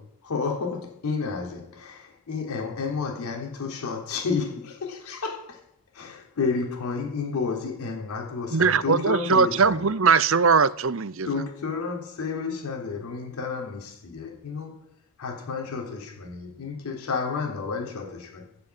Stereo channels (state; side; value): normal; both; correlation 0.04